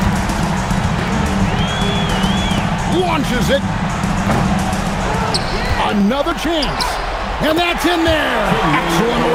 Launches it. Another chance. And that's in there. Excellent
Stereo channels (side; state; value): both; identical; correlation 1.00